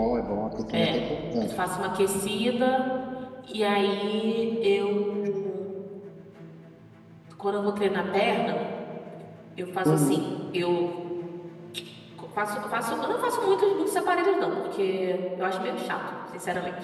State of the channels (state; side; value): identical; both; correlation 1.00